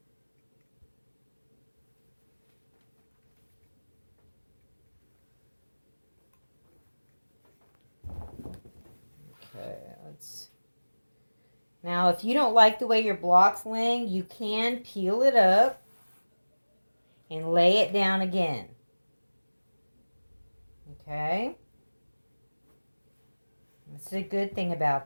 Okay, now if you don't like the way your block's laying, you can peel it up and lay it down again. Okay? That's a good thing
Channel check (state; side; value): inverted; both; correlation -1.00